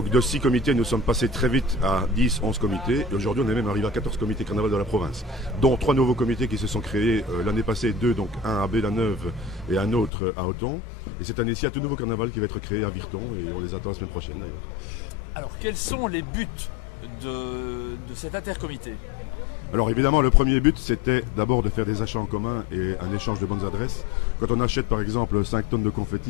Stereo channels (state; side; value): drops out; right; at 10.1 s